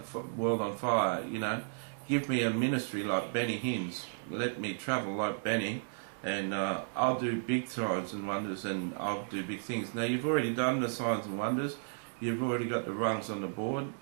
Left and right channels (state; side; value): silent; left; digital silence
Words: world on fire, you know. Give me a ministry like Benny Hinn's. Let me travel like Benny, and I'll do big signs and wonders, and I'll do big things. Now, you've already done the signs and wonders. You've already got the rungs on the board,